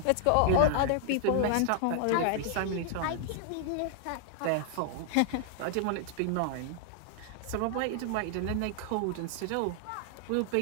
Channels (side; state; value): both; different; correlation -0.01